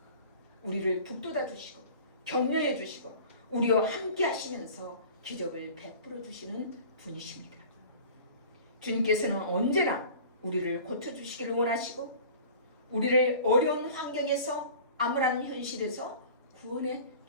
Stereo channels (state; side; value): inverted; both; correlation -0.42